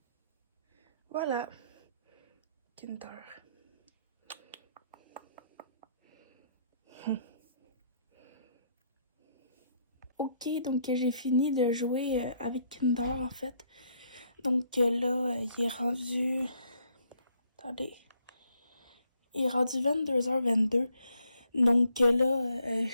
Voilà, Kinder. Ok, donc j'ai fini de jouer avec Kinder en fait. Donc là, il est rendu... Attendez. Il est rendu 22h22. Donc là,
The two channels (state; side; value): inverted; both; correlation -0.71